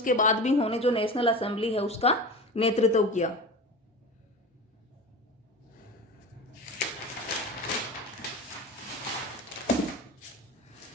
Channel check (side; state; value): both; normal; correlation 0.31